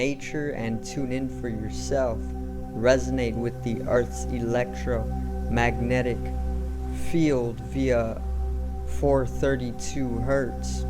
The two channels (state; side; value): identical; both; correlation 1.00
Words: and tune in for yourself. Resonate with the Earth's electromagnetic field via 432 hertz,